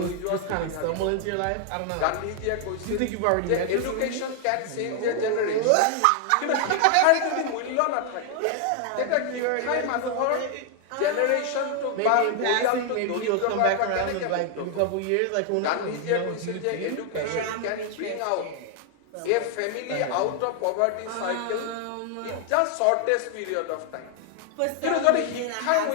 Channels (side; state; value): both; different; correlation 0.00